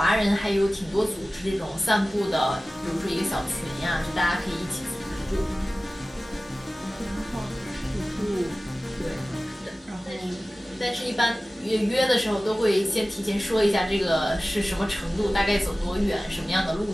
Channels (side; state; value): both; normal; correlation 0.96